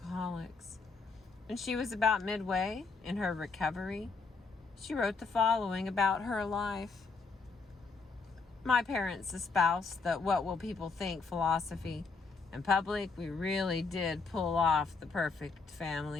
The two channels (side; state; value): right; quieter; 4.4 dB